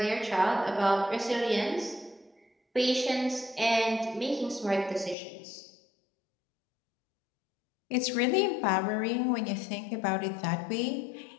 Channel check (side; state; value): right; drops out; at 5.2 s